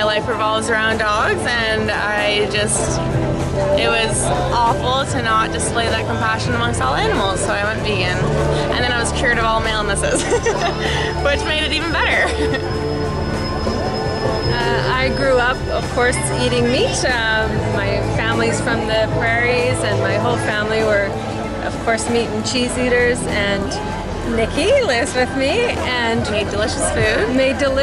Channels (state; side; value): identical; both; correlation 1.00